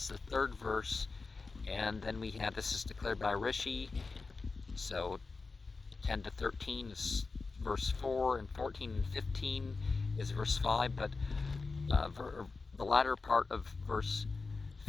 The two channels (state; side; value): quieter; right; 4.1 dB